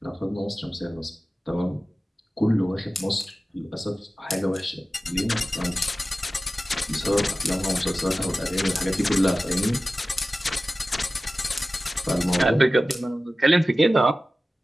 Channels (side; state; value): both; normal; correlation 0.96